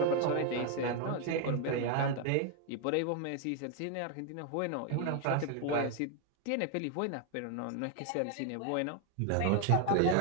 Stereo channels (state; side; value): different; both; correlation 0.01